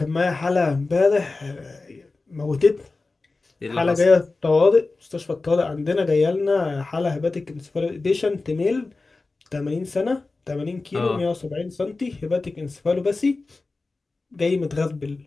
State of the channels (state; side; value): quieter; right; 3.6 dB